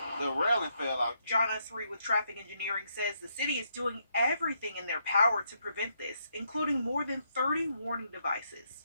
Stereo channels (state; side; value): inverted; both; correlation -0.76